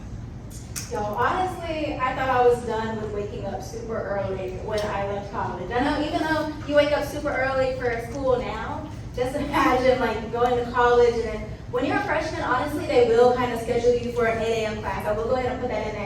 So honestly, I thought I was done with waking up super early when I left college. I know even though you wake up super early for school now, just imagine like going to college and then When you're a freshman, honestly, they will kind of schedule you for an 8 a.m. class. I will go ahead and put that in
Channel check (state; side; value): identical; both; correlation 1.00